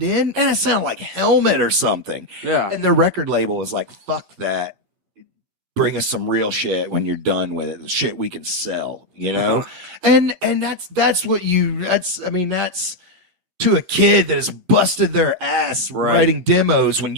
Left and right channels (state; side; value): late; left; 11 ms